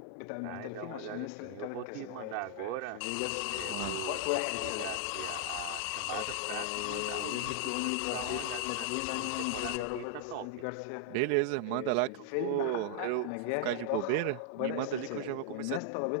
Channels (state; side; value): different; both; correlation -0.01